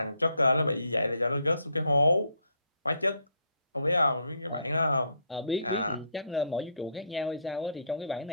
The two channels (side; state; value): both; inverted; correlation -0.67